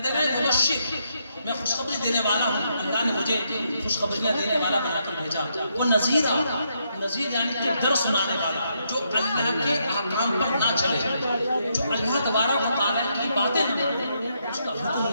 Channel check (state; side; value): inverted; both; correlation -0.77